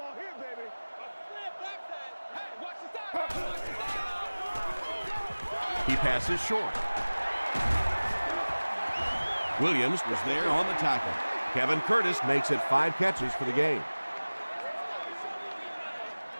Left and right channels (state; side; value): inverted; both; correlation -1.00